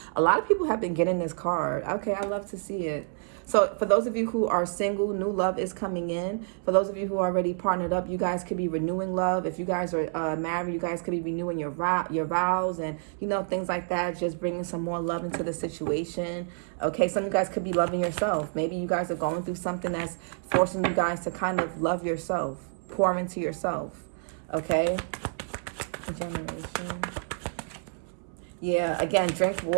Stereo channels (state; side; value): silent; left; 59 dB below the other